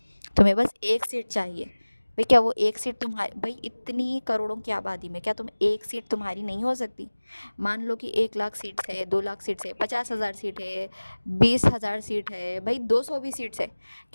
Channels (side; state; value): both; inverted; correlation -1.00